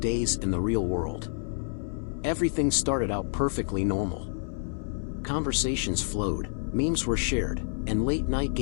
in the real world. Everything started out perfectly normal. Conversations flowed, memes were shared, and late-night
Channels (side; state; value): right; silent; 59 dB below the other